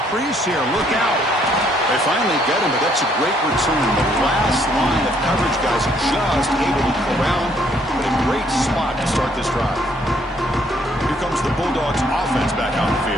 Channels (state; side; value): normal; both; correlation 0.67